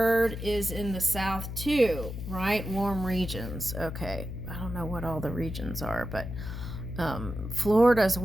is in the south too, right? Warm regions. Okay, I don't know what all the regions are, but Florida's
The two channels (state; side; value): noise; left; hum, 7 dB below the sound